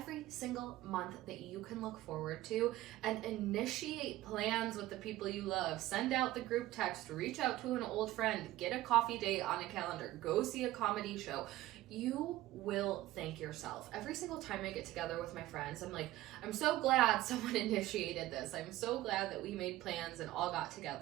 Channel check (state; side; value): quieter; left; 16.0 dB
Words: single month that you can look forward to and initiate plans with the people you love. Send out the group text, reach out to an old friend, get a coffee date on a calendar, go see a comedy show. You will thank yourself. Every single time I get together with my friends, I'm like, I'm so glad someone initiated this. I'm so glad that we made plans and all got